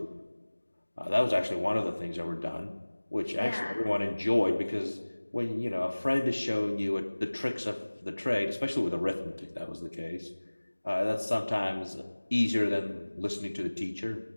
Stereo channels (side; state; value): both; inverted; correlation -1.00